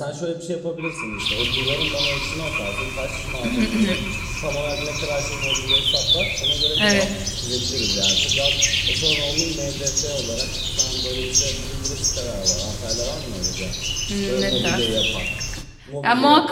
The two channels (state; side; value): identical; both; correlation 1.00